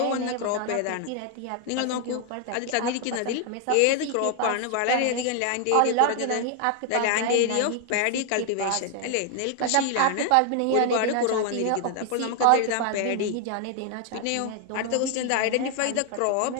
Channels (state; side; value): different; both; correlation 0.00